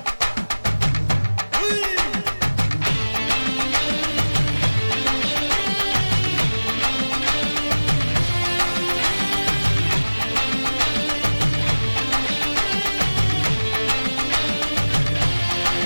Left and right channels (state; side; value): inverted; both; correlation -1.00